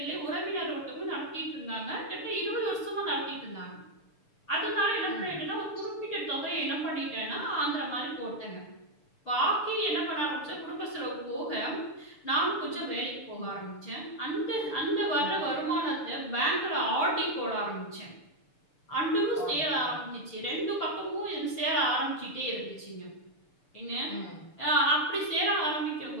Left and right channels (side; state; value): right; late; 6.8 ms